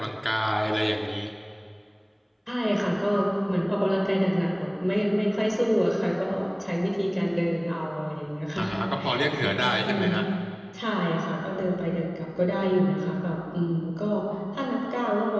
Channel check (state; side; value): identical; both; correlation 1.00